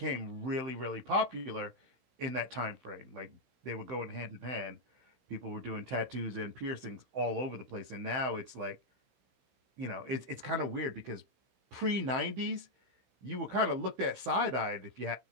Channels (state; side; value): late; left; 15 ms